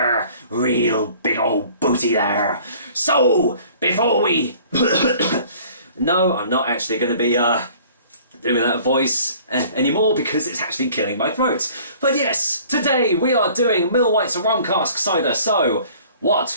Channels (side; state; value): both; inverted; correlation -0.52